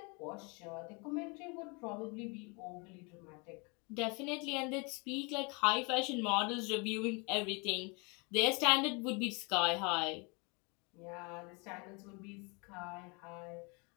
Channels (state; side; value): quieter; right; 30.8 dB